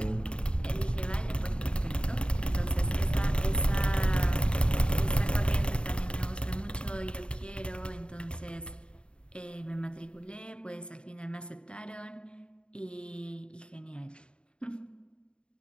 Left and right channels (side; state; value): right; late; 0.053 ms